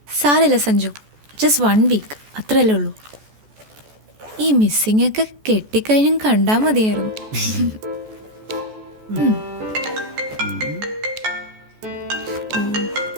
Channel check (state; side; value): late; left; 14 ms